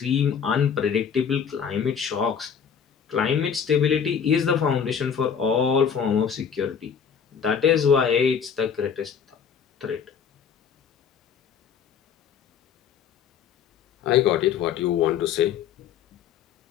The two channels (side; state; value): right; quieter; 7.3 dB